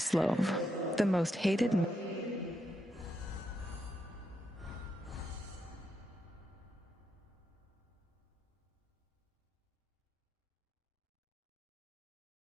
the most hated.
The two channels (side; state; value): both; normal; correlation 0.82